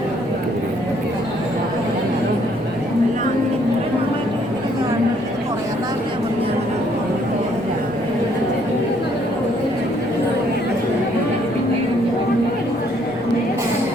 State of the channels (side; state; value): right; noise; rumble, 26 dB below the sound